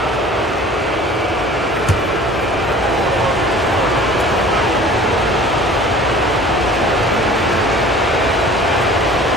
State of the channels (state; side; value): normal; both; correlation 0.46